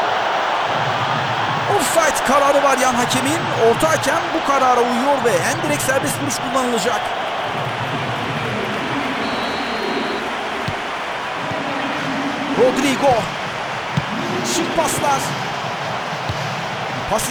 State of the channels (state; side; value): identical; both; correlation 1.00